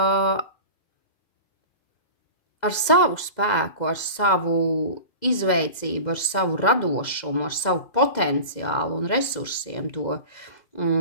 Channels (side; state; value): right; late; 2.1 ms